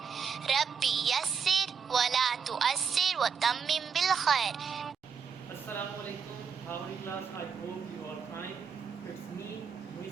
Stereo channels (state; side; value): quieter; left; 6.5 dB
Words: Rabbi yassir wa la tu'assir wa tammim bil khair. Assalamu alaikum. How are you class? I hope you are fine. It's me,